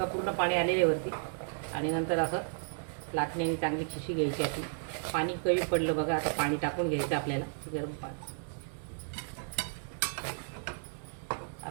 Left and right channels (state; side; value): silent; left; digital silence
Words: पूर्ण पाणी आलेले वरती. आणि नंतर असं लाटण्याने चांगली खिशी घ्यायची आपली. पाणी कमी पडलं बघा. आता पाणी टाकून घ्यायचं आपल्याला गरम पाणी.